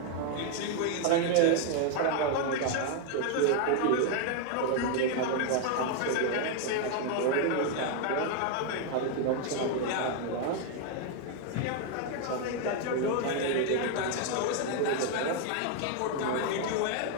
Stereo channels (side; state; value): both; different; correlation 0.01